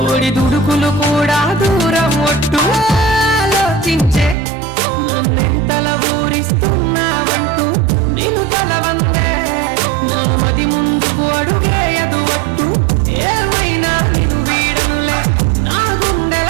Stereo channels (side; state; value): left; drops out; at 4.4 s